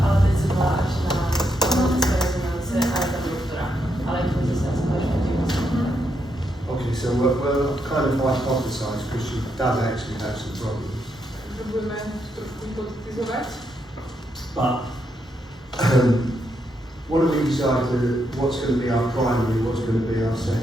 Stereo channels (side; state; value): both; normal; correlation 0.80